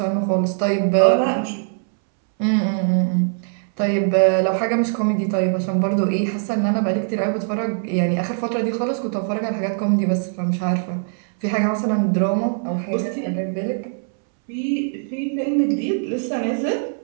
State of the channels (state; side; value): silent; left; 64 dB below the other